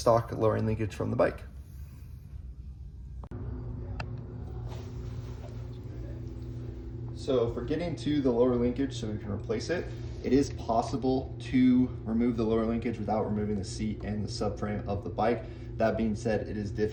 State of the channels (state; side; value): identical; both; correlation 1.00